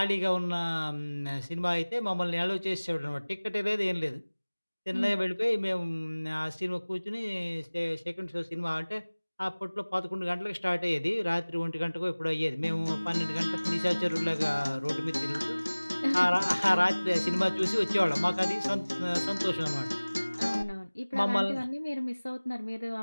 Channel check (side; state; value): both; inverted; correlation -1.00